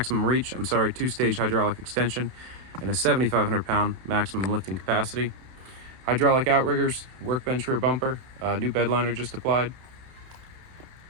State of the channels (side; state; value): left; late; 31 ms